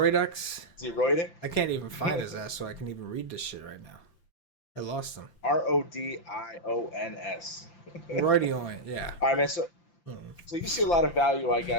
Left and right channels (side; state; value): right; late; 5.8 ms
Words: Is he roiding? I can't even find his ass, so I can even read this shit right now. I lost him. Rodions. Roydioin, yeah. All right, man. So you see a lot of value, I